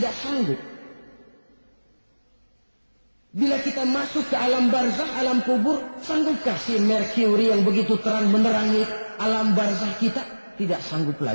sanggup. Bila kita masuk ke alam barzakh, alam kubur, sanggupkah si Mercury yang begitu terang menerangi alam barzakh kita? Tidak sanggup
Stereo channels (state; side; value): inverted; both; correlation -1.00